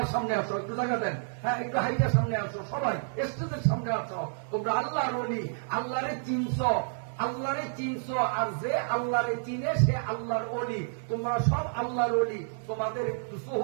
সামনে আসো, একটু জায়গা দেন, হ্যাঁ, একটু হাইটার সামনে আসো, সবাই স্টেজের সামনে আসো। তোমরা আল্লাহর ওলি, আল্লাহরে চিনছো, আল্লাহরে চিনছো, আর যে আল্লাহরে চিনে সে আল্লাহর ওলি। তোমরা সব আল্লাহর ওলি, তোমাদের একটু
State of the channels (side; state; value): left; silent; digital silence